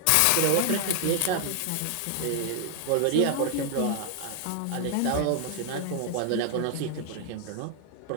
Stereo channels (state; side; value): different; both; correlation 0.00